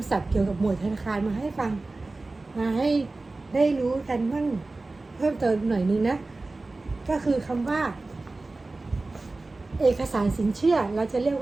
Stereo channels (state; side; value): quieter; left; 3.3 dB